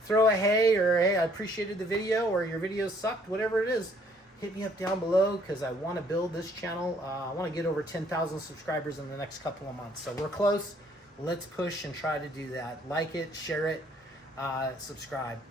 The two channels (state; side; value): normal; both; correlation 0.63